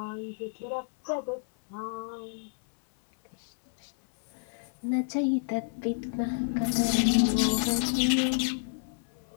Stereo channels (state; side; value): silent; right; 58 dB below the other